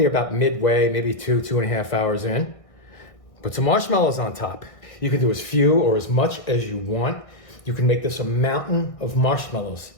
about midway, maybe 2.5 hours in, put some marshmallows on top. You can do as few or as much as you want. You can make this a mountain of marshmallows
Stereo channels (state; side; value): late; right; 1.6 ms